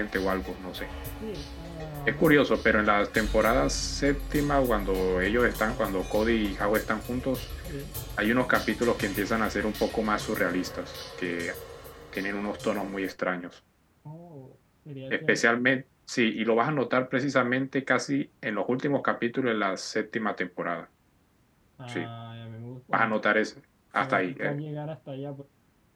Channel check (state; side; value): identical; both; correlation 1.00